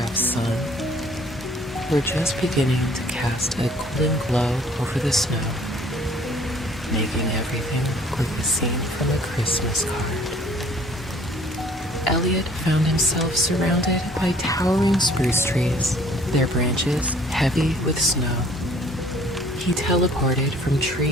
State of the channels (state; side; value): normal; both; correlation 0.55